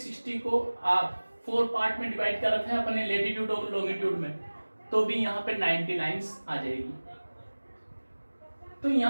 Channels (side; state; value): both; inverted; correlation -1.00